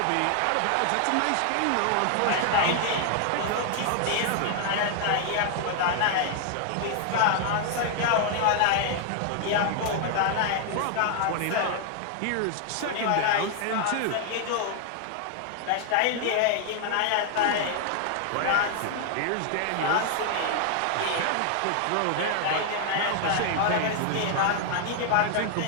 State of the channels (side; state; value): both; different; correlation 0.00